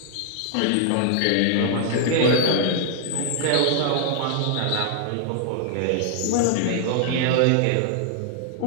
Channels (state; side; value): different; both; correlation -0.01